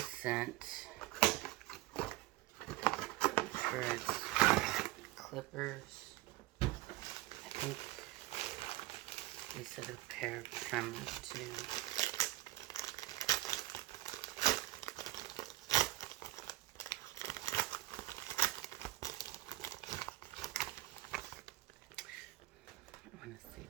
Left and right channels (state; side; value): quieter; left; 18.9 dB